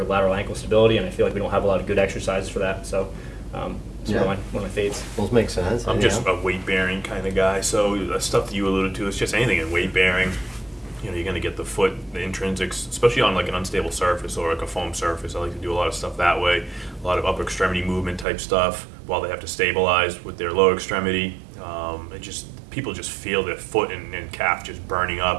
lateral ankle stability, and I feel like we don't have a lot of good exercises for that. So it's one of my faves. Those make sense. I'm just a weight bearing kind of guy, so the stuff that you alluded to is just anything in weight bearing. You know, you're going to get the foot, the intrinsics, especially on like an unstable surface or like a foam surface. I like to do a lot of stuff that way, a lot of upper extremity movement type stuff while they have to stabilize with their lower extremity. People just feel their foot and calf just burning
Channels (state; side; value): drops out; left; at 18.2 s